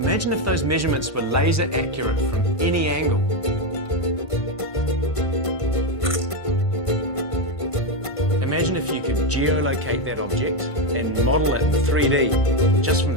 Imagine if those measurements were laser accurate from any angle. Imagine if you could geolocate that object and model it in 3D just from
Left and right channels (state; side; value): late; right; 1.5 ms